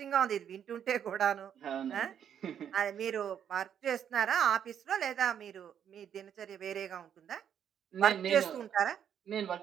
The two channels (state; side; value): quieter; left; 8.9 dB